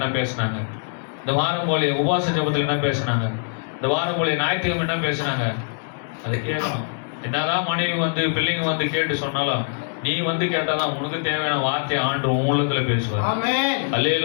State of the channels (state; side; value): silent; right; digital silence